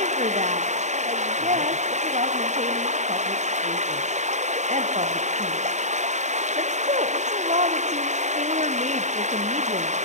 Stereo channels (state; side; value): late; left; 0.34 ms